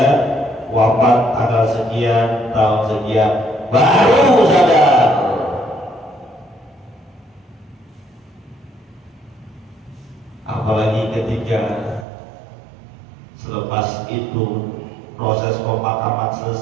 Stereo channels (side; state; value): left; drops out; at 12.1 s